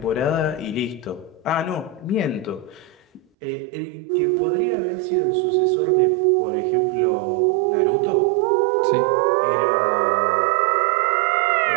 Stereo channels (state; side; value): drops out; left; at 3.2 s